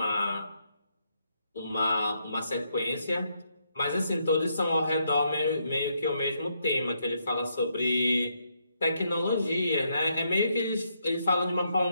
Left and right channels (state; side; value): inverted; both; correlation -0.77